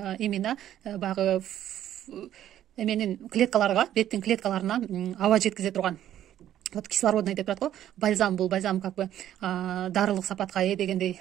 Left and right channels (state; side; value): quieter; left; 11.7 dB